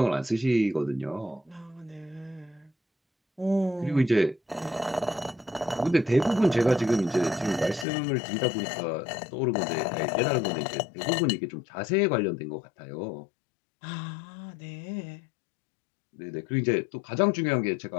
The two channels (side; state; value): right; drops out; at 7.9 s